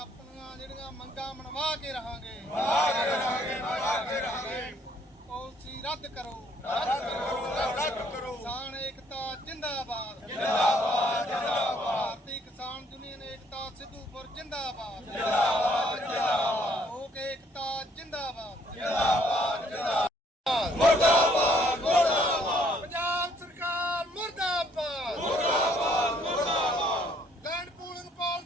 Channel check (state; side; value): normal; both; correlation 0.65